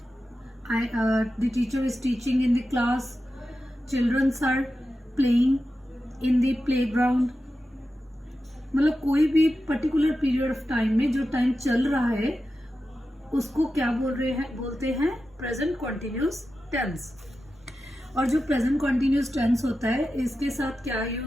the teacher is teaching in the class, childrens are playing in the playground, मतलब कोई भी पर्टिकुलर पीरियड ऑफ टाइम में जो टाइम चल रहा है उसको क्या बोलते हैं प्रेजेंट कॉन्टिन्यूस टेंस। और जो प्रेजेंट कॉन्टिन्यूस टेंस होता है इसके साथ क्या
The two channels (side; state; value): both; normal; correlation 0.92